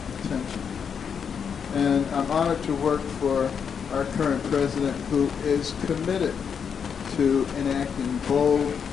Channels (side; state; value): right; quieter; 6.9 dB